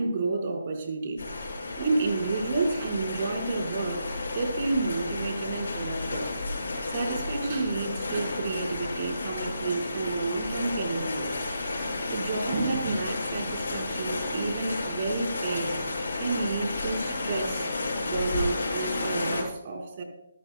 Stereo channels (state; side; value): inverted; both; correlation -0.81